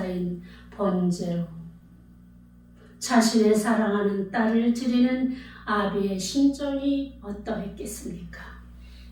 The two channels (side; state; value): both; identical; correlation 1.00